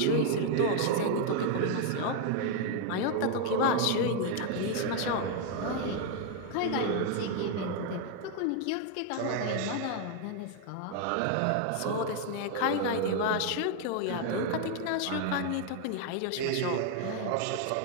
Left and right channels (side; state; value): both; different; correlation 0.00